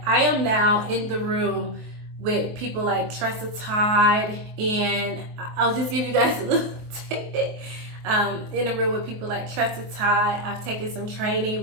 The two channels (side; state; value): left; late; 23 ms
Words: I am now in the room with people like Tressa Todd, and I'll just give you guys a little tidbit. In a room with people like Tressa Todd. I've taken some training